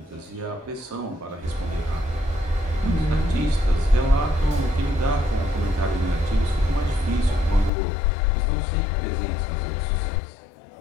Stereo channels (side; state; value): right; drops out; at 7.7 s